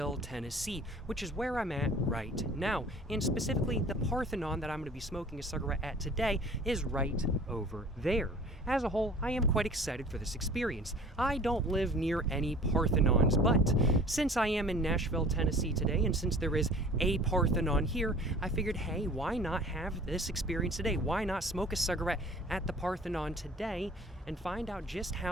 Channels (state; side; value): normal; both; correlation 0.47